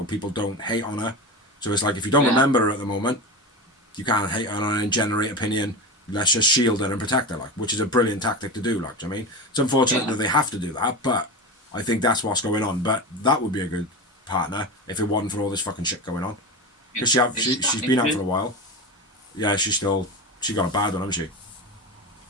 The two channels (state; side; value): normal; both; correlation 0.24